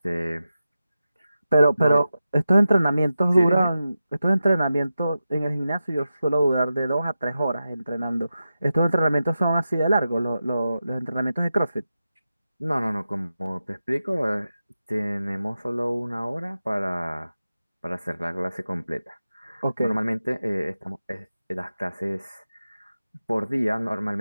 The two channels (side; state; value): both; inverted; correlation -0.91